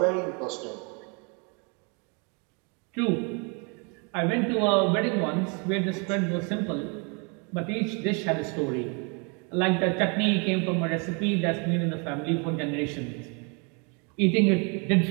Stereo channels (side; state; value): left; quieter; 34.4 dB